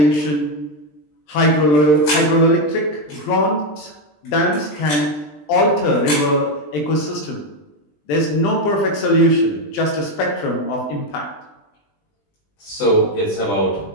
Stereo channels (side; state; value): right; late; 20 ms